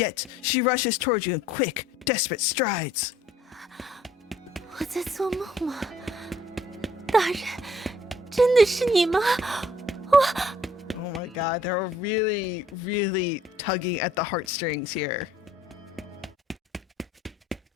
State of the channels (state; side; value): normal; both; correlation 0.60